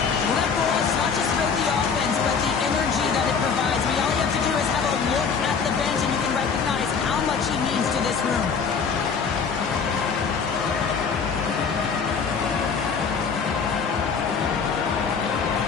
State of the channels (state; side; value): quieter; right; 5.8 dB